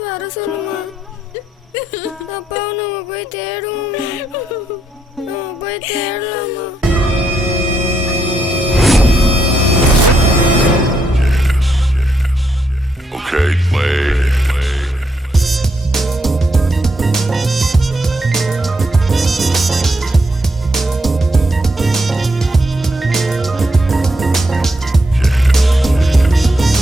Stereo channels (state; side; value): normal; both; correlation 0.79